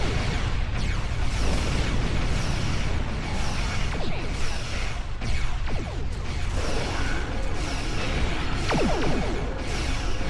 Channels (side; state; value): both; identical; correlation 1.00